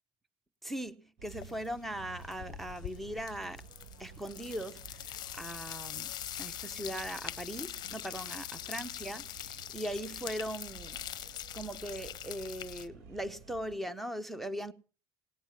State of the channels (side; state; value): both; normal; correlation 0.60